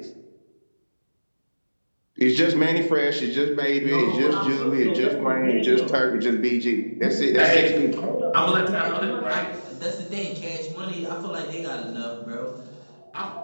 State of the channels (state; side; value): inverted; both; correlation -1.00